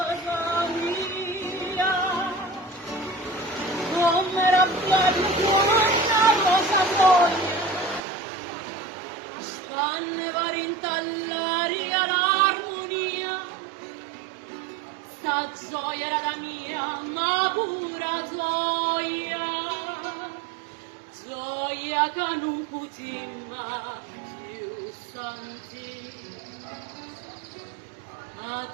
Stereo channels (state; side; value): drops out; left; at 8.0 s